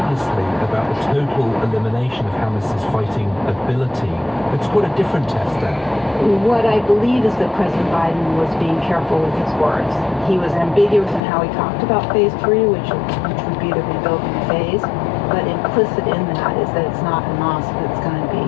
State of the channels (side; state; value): right; drops out; at 11.2 s